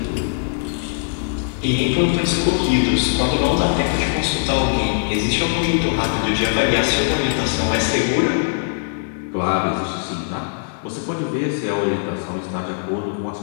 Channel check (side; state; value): right; silent; 65 dB below the other